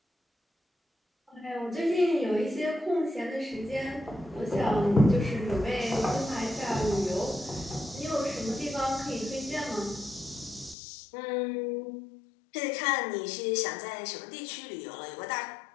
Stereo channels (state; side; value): drops out; right; at 10.8 s